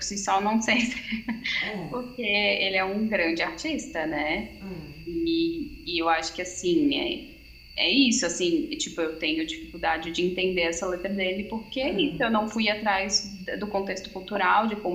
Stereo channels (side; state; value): both; identical; correlation 1.00